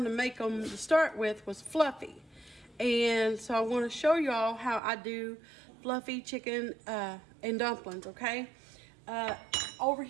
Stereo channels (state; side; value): drops out; left; at 4.8 s